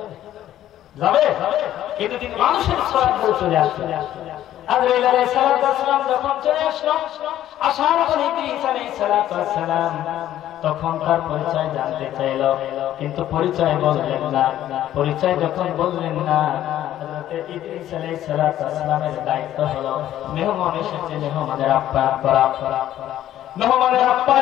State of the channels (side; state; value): right; quieter; 12.5 dB